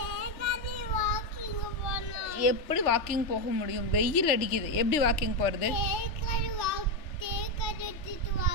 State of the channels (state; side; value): late; right; 3.4 ms